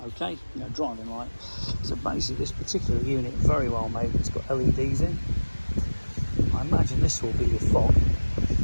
Okay, driving light. So basically this particular unit, very well made, it's got LEDs in. I imagine this will be your fog,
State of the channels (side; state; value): both; inverted; correlation -1.00